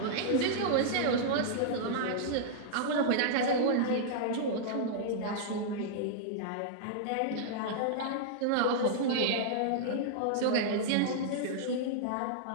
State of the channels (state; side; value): different; both; correlation -0.02